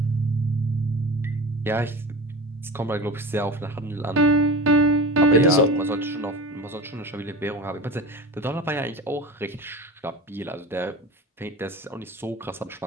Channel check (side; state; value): both; normal; correlation 0.32